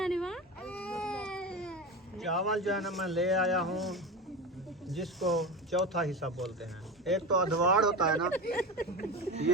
वहाँ। चावल जो है ना मैं ले आया हूँ, जिसको चौथा हिस्सा बोलते हैं। एक तो अधवाड़ होता है ना,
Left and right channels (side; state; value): both; normal; correlation 0.25